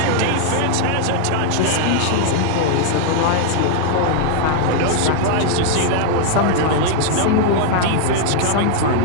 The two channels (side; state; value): both; different; correlation 0.00